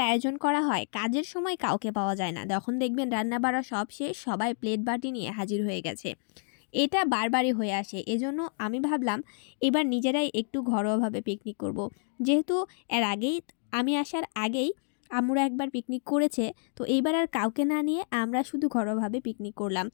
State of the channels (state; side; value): silent; right; digital silence